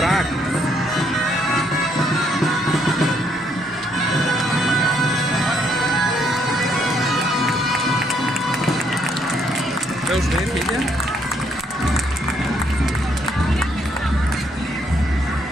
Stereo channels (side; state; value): both; normal; correlation 0.71